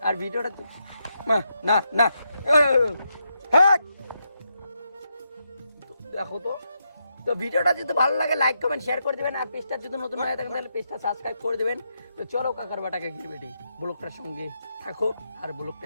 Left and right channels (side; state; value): both; inverted; correlation -0.83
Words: আর ভিডিওটা না না দেখো তো ভিডিওটা যদি ভালো লাগে লাইক কমেন্ট শেয়ার করে দেবেন। আর পেজটা যদি নতুন হয়ে থাকেন তাহলে পেজটা সাবস্ক্রাইব করে দেবেন। তো চলো কাকার বাটাকে গিরবেটি ব্লগটার সঙ্গে থাকো আর